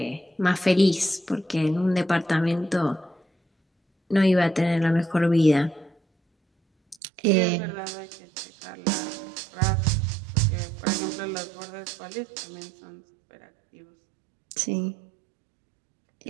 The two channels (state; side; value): drops out; left; at 7.0 s